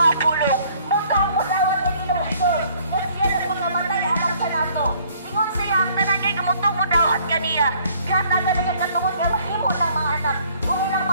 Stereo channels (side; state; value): both; inverted; correlation -0.60